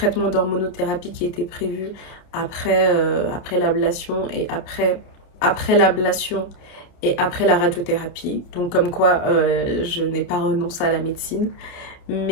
d'hormonothérapie qui était prévu après l'ablation et après l'ablation et après la radiothérapie. Donc comme quoi, je n'ai pas renoncé à la médecine.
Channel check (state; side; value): late; right; 29 ms